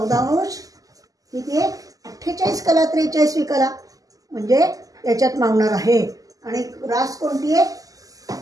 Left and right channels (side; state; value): left; late; 0.17 ms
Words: अंश किती आहे? 48 कला 43वी कला म्हणजे याच्यात मावणार आहे. आणि रास कोणती आहे?